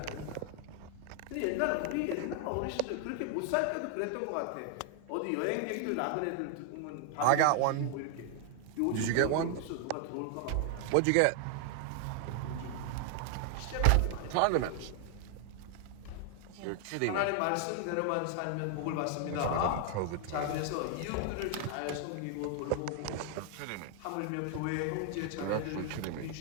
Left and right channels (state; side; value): different; both; correlation 0.00